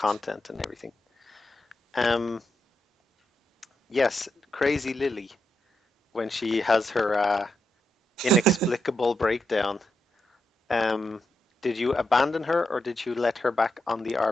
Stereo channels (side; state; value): both; normal; correlation 0.84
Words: and everything. Um, yes, Crazy Lily, when she has her inexplicable breakdown. Um, did you abandon her or did you let her back on the